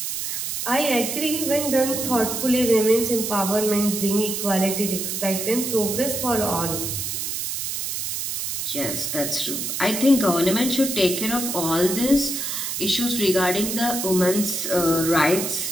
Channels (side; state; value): right; noise; hiss, 3 dB below the sound